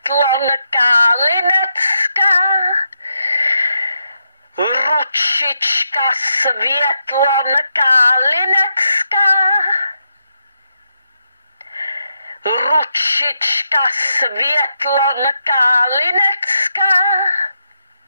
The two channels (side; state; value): both; inverted; correlation -0.83